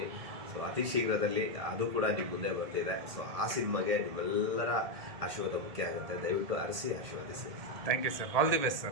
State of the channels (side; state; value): left; late; 1.8 ms